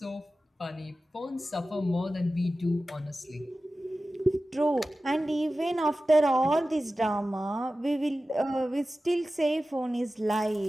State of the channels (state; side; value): normal; both; correlation 0.95